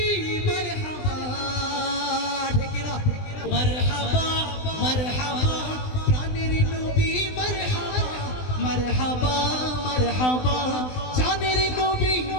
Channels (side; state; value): right; late; 20 ms